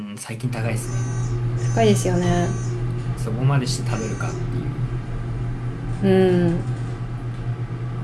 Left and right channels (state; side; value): identical; both; correlation 1.00